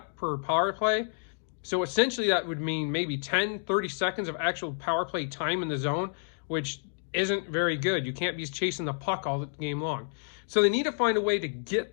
per power play. So essentially, that would mean maybe 10, 30 seconds of actual power play time in the zone, which isn't very good. You can't be chasing the puck all the game long. So they need to find a way to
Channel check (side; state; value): right; silent; digital silence